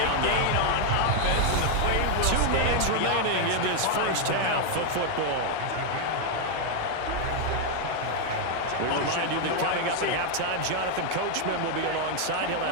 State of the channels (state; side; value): different; both; correlation 0.00